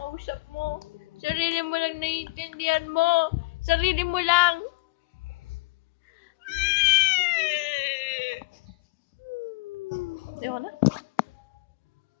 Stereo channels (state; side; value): quieter; right; 26.0 dB